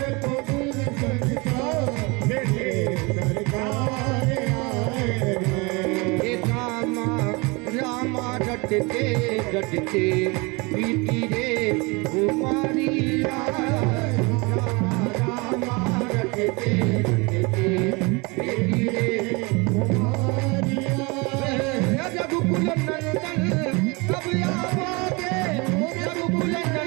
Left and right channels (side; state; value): left; quieter; 27.2 dB